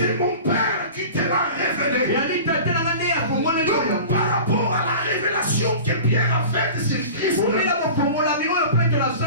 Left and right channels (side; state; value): both; inverted; correlation -0.37